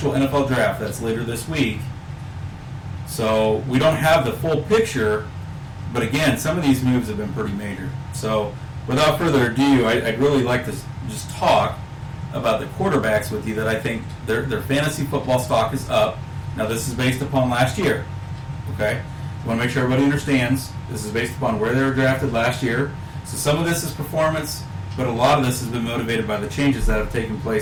NFL draft. That's later this week. So we don't have the full picture, but again, some of these moves have been pretty major. So without further ado, I'd really like to just talk about the quarterbacks with you that I think their fantasy football stock is up. Now this is based upon last year. Okay? I want to make sure everybody understands this is based upon where they were drafted last year. So some of this is performance, but a lot of this has been motivated by the changes that have taken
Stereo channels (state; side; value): identical; both; correlation 1.00